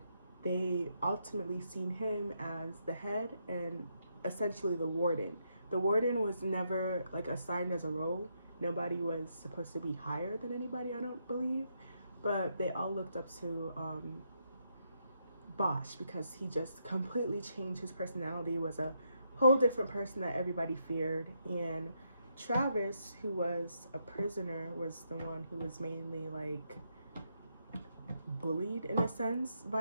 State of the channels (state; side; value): inverted; both; correlation -0.79